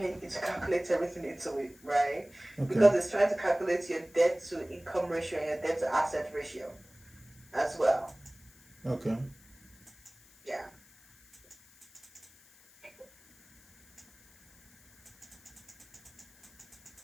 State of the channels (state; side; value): noise; left; hiss, 26 dB below the sound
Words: it will calculate everything into it, right? Okay. Because it's trying to calculate your debt to income ratio and your debt to asset ratio as well. Okay. Yeah.